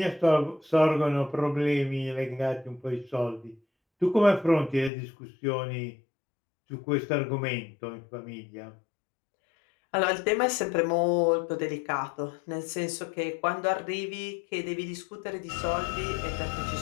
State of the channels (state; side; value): drops out; right; at 4.9 s